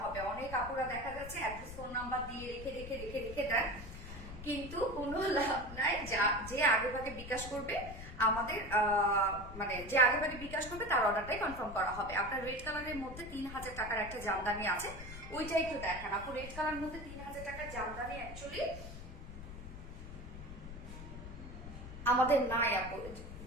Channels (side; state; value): left; noise; rumble, 11 dB below the sound